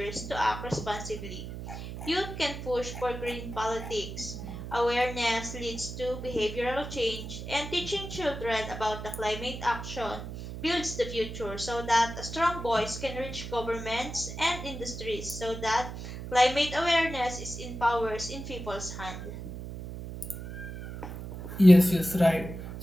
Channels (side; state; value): right; noise; hum, 9 dB below the sound